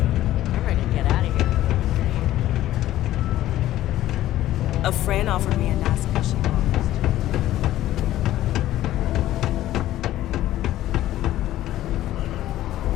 ready to get out of here. A friend offered me a nice fishing office.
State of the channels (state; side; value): quieter; right; 14.0 dB